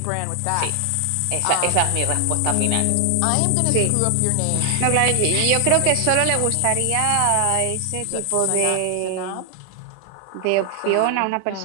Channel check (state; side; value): different; both; correlation 0.00